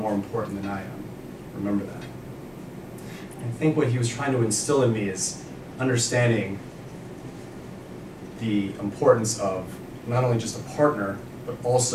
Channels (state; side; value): identical; both; correlation 1.00